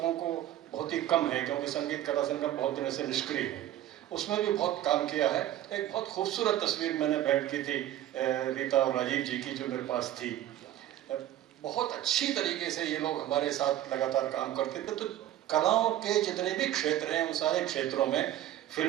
को बहुत ही कम है क्योंकि संगीत कला संगम बहुत दिनों से निष्क्रिय है। उसमें भी बहुत काम किया है। एक बहुत खूबसूरत तस्वीर मैंने भेंट की थी रीता और राजीव जी की, जो मेरे पास थी। बहुत अच्छी तरीके से ये लोग हमारे साथ लगातार काम करते थे। तो कलाओं के जितने भी क्षेत्र हैं उन सारे क्षेत्रों में,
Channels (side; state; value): left; quieter; 12.9 dB